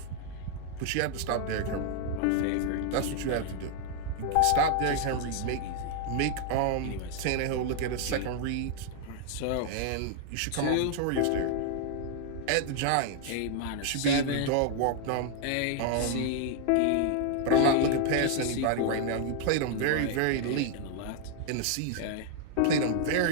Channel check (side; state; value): both; different; correlation 0.00